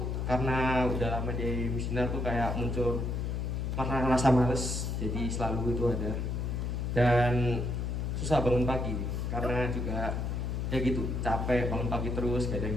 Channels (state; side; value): noise; left; hum, 1 dB below the sound